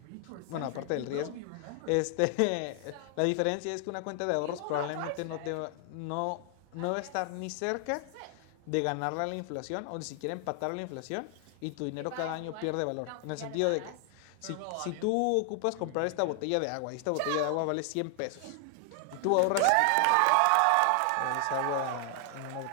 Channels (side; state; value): both; different; correlation 0.00